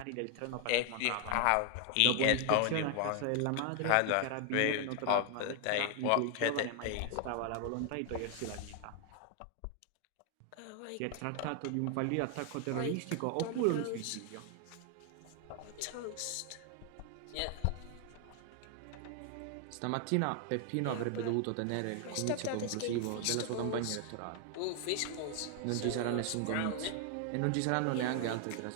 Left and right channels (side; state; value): both; different; correlation 0.00